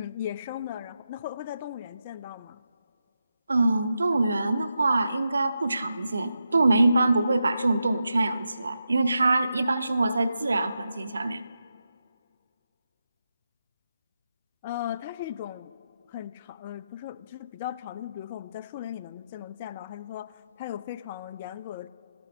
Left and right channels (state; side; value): inverted; both; correlation -0.87